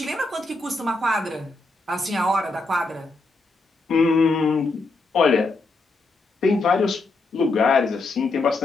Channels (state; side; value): quieter; right; 3.3 dB